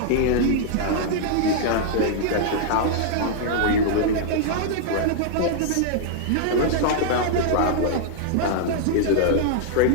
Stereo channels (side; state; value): both; different; correlation -0.01